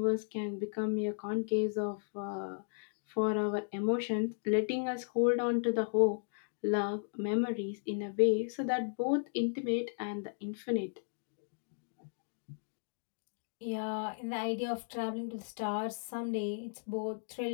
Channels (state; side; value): silent; right; digital silence